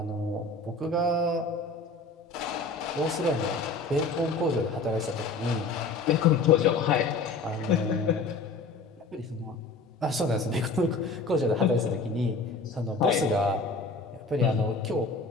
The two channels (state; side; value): quieter; right; 3.7 dB